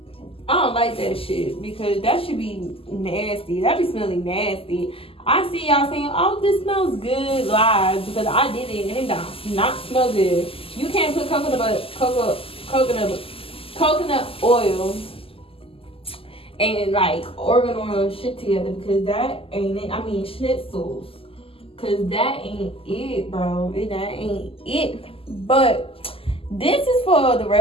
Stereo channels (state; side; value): late; right; 0.27 ms